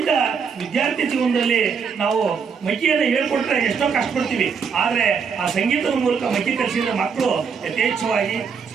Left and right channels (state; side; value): quieter; left; 6.1 dB